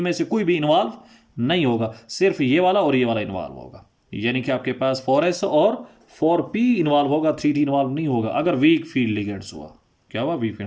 से कोई भी इन्वॉल्व नहीं होगा, सिर्फ ये वाला और ये वाला इन्वॉल्व होगा। यानी कि आपके पास 4s और 4p इन्वॉल्व होगा, 3d इन्वॉल्व नहीं होगा अगर वीक फील्ड लिगेंड्स हुआ। क्या हुआ, वीक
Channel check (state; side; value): identical; both; correlation 1.00